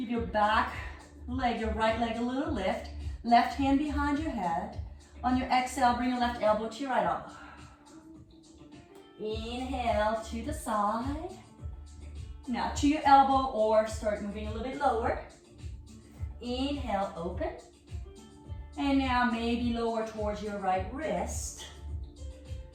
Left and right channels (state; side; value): identical; both; correlation 1.00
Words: your back leg, your right leg a little lift. Left hand behind your head. On your exhale, bring your left elbow to your right elbow. Inhale to the side. Now to your elbow or start moving a little bit lower. Inhale, open. And now maybe lower towards your right wrist.